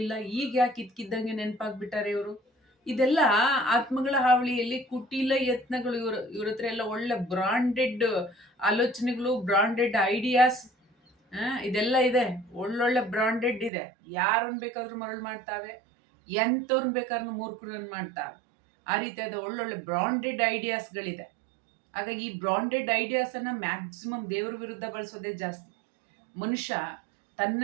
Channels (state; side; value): drops out; left; at 13.7 s